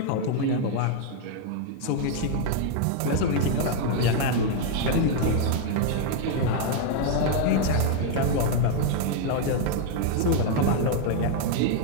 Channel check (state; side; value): different; both; correlation 0.00